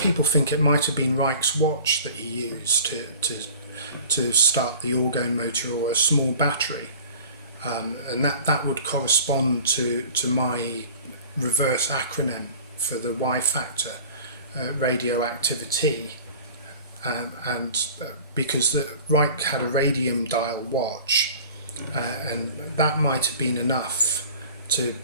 think it might have been Reich's watch that he used to start the orgone motor, or a small battery. And that would correspond to my reverse acronym for the Y factor, radioactivity. And because Reich had a radium dial watch, and that might have been enough to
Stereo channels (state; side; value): inverted; both; correlation -0.43